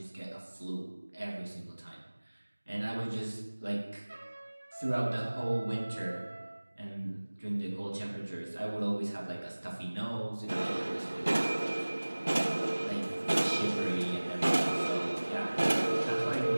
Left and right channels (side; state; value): both; inverted; correlation -1.00